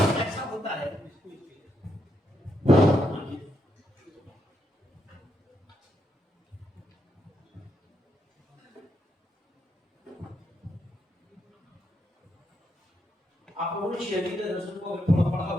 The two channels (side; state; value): both; normal; correlation 0.80